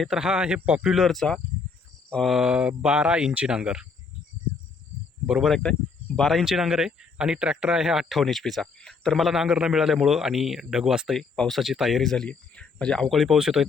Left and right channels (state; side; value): quieter; right; 4.9 dB